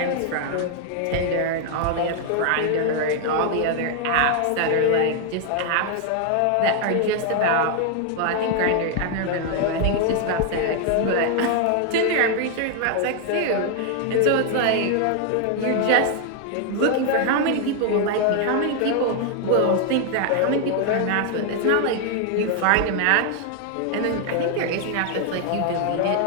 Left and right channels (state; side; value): different; both; correlation 0.00